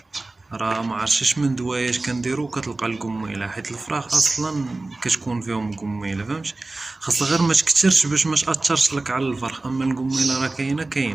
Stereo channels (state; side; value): quieter; left; 3.1 dB